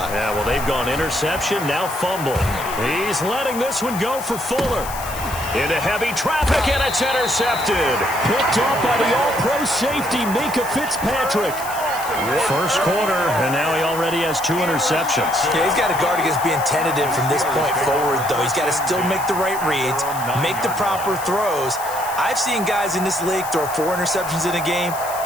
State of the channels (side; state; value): left; noise; hiss, 12 dB below the sound